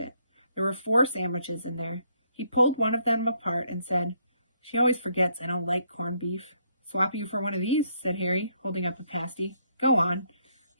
There were 4 sandwiches in there. He pulled one of them apart and said, "She always forgets I don't like corned beef." "Swap you for one of these," said Harry, holding up a pasty. "Go on."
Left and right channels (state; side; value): inverted; both; correlation -0.72